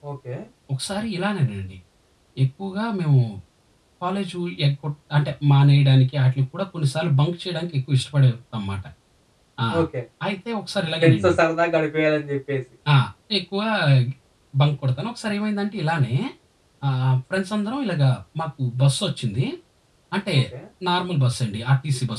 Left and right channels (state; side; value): identical; both; correlation 1.00